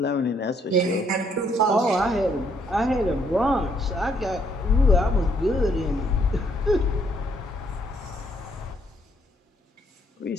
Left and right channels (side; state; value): both; normal; correlation 0.69